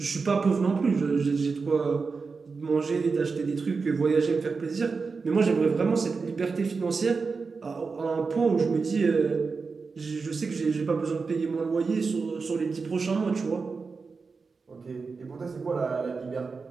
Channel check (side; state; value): left; quieter; 4.7 dB